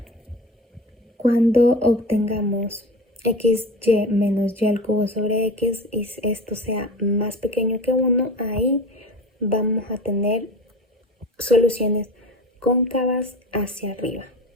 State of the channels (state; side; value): normal; both; correlation 0.34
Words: cuando obtengamos xy menos y al cubo sobre x y esto sea más pequeño que 1, ahí vamos a tener soluciones cóncavas hacia arriba.